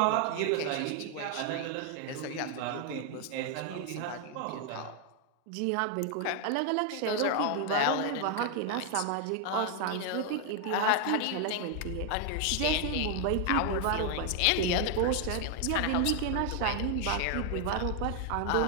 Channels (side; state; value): both; different; correlation 0.00